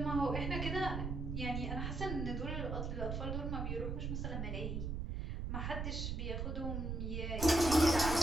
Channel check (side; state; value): right; noise; rumble, 2 dB below the sound